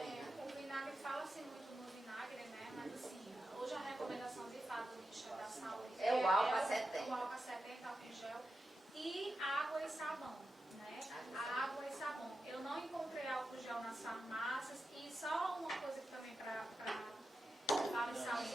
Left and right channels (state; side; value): normal; both; correlation 0.90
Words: O vinagre, fala-se muito no vinagre, né? Mas assim, hoje a recomendação de fato do Ministério da Saúde É o álcool 70. O álcool 70, álcool gel e água e sabão, né? A água e sabão. Eu não encontrei álcool gel nas farmácias e só uma coisa que também para